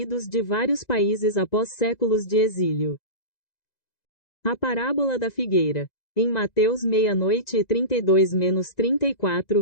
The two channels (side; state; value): right; late; 2.0 ms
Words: de vários países após séculos de exílio. A parábola da figueira. Em Mateus meia-noite e